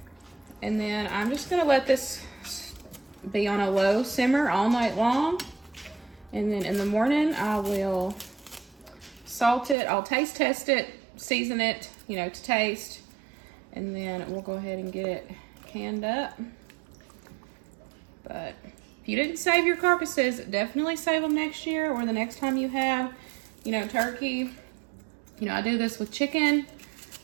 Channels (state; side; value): drops out; left; at 9.8 s